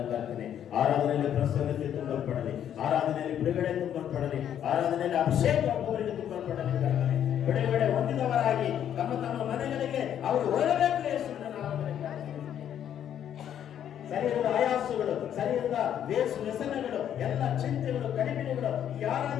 ಪ್ರಾರ್ಥನೆ. ಆರಾಧನೆಯಲ್ಲಿ ಪ್ರಸನ್ನತೆ ತುಂಬಲ್ಪಡಲಿ, ಆರಾಧನೆಯಲ್ಲಿ ಬಿಡುಗಡೆ ತುಂಬಲ್ಪಡಲಿ, ಆರಾಧನೆಯಲ್ಲಿ ಅಭಿಷೇಕ ಒಬ್ಬೊಬ್ಬರಿಗೆ ತುಂಬಲ್ಪಡಲಿ. ಪ್ರಾರ್ಥನೆ ಬಿಡುಗಡೆ ಹೊಂದಿದವರಾಗಿ ತಮ್ಮ ತಮ್ಮ ಮನೆಗಳಿಗೆ ಅವರು ಹೊರಬೇಕು. ಯೇಸುವಿನ ನಾಮದಲ್ಲಿ ಶರೀರದ ಆಯಾಸಗಳು, ಶರೀರದ ವ್ಯಸನಗಳು, ಎಲ್ಲ ಚಿಂತೆಗಳು, ಕಡಿಮೆಗಳು ಈ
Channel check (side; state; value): right; quieter; 9.9 dB